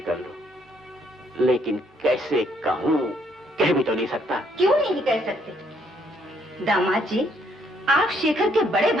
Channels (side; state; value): both; normal; correlation 0.69